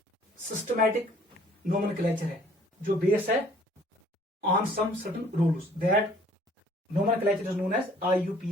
सिस्टमैटिक नोमेनक्लेचर है, जो बेस है on some certain rules, that nomenclature is known as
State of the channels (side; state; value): both; normal; correlation 0.56